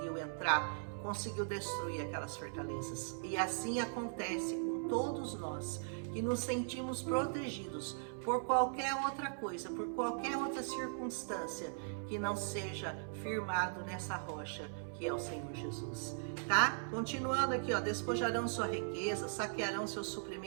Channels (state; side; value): silent; left; 52 dB below the other